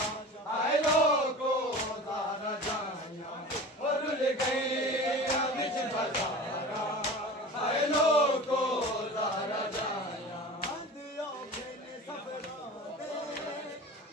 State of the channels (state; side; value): normal; both; correlation 0.36